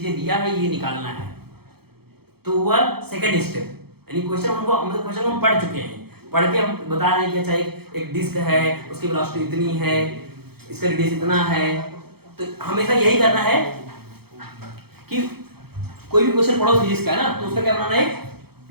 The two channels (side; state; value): left; late; 0.96 ms